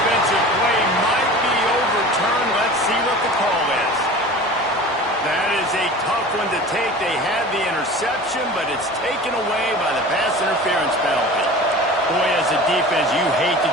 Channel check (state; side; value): normal; both; correlation 0.38